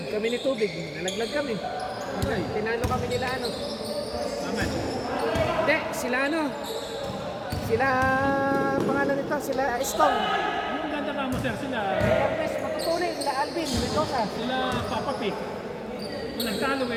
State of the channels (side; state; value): both; identical; correlation 1.00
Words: Kami ni Tubig. Nalaglag kami. Okay. Tinalo kami nila ano. Aman. Hindi, sila ano. Sila, pangalan nito, sila Stong. Yung ganda ka mo, sir, sila, Cortez, matutuloy, sila Alvin, Mendoza. sila Papa P. Walang talo